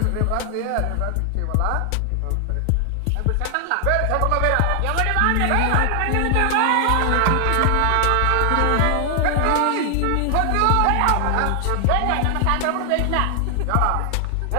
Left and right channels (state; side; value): different; both; correlation 0.00